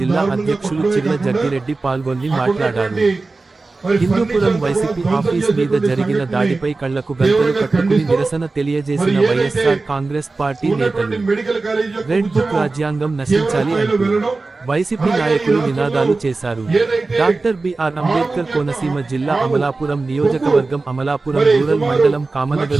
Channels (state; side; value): quieter; left; 3.6 dB